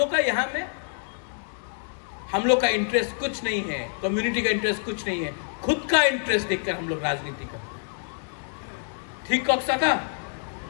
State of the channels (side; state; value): right; silent; 60 dB below the other